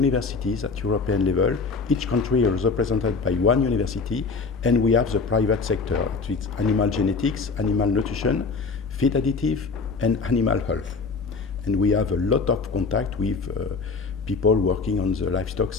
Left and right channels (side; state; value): right; quieter; 4.4 dB